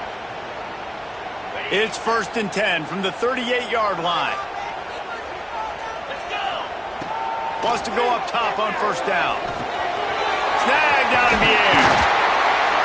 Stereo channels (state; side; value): identical; both; correlation 1.00